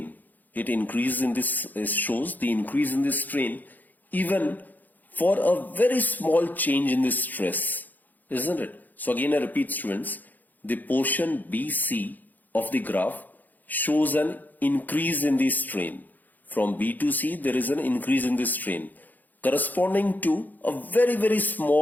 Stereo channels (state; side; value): late; right; 0.084 ms